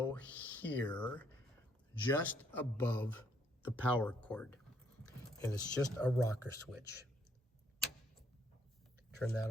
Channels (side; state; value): both; normal; correlation 0.69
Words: here, just above the power cord. And it's just a rocker switch. Turn